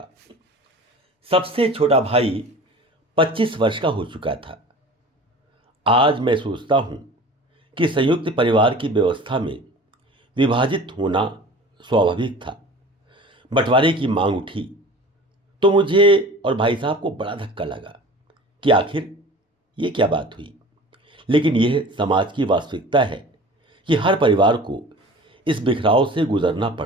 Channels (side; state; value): both; normal; correlation 0.41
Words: सबसे छोटा भाई 25 वर्ष का हो चुका था। आज मैं सोचता हूं कि संयुक्त परिवार की व्यवस्था में विभाजित होना स्वाभाविक था। बंटवारे की मांग उठी तो मुझे और भाई साहब को बड़ा धक्का लगा कि आखिर ये क्या बात हुई। लेकिन यह समाज की वास्तविकता है कि हर परिवार को इस बिखराव से गुजरना